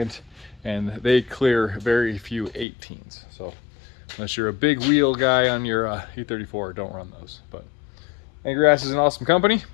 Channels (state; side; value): drops out; right; at 2.7 s